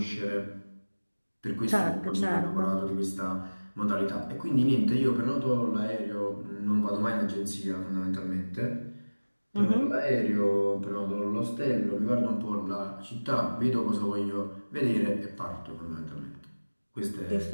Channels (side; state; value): both; inverted; correlation -1.00